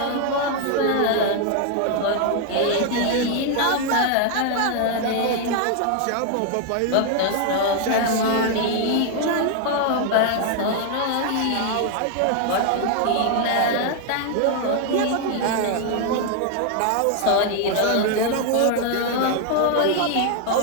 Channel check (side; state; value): both; different; correlation 0.00